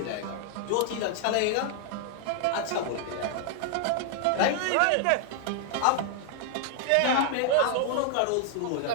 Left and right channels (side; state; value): both; different; correlation 0.00